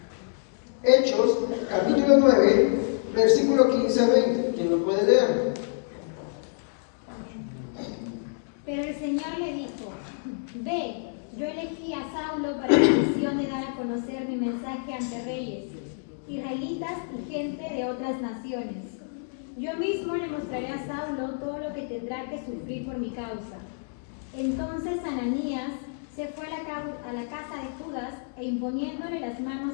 Hechos, capítulo 9, versículo 15, 20, ¿quién lo puede leer? Pero el Señor le dijo: ve, yo elegí a Saulo para la misión de dar a conocer mi mensaje ante reyes, israelitas y gente de otras naciones. Yo mismo le mostraré a Saulo todo lo que tendrá que sufrir por mi causa. Entonces Ananías se fue a la casa de Judas e imponiéndole las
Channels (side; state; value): right; silent; digital silence